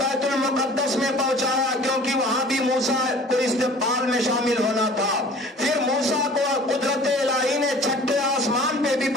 بیت المقدس میں پہنچایا، کیونکہ وہاں بھی موسیٰ کو استقبال میں شامل ہونا تھا۔ پھر موسیٰ کو قدرت الہی نے چھٹے آسمان پہ بھی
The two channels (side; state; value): both; normal; correlation 0.47